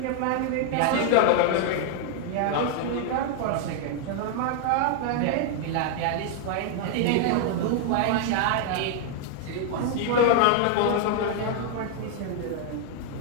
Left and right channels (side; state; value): both; different; correlation 0.00